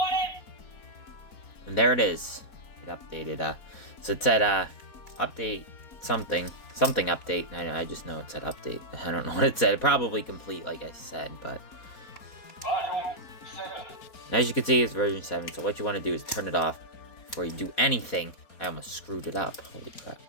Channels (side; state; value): right; late; 4.2 ms